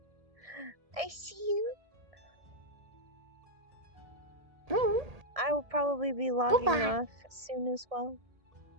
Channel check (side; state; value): left; late; 1.6 ms